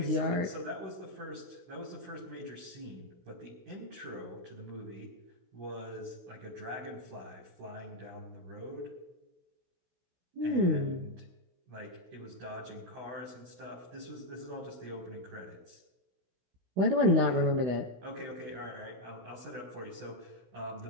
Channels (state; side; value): late; left; 16 ms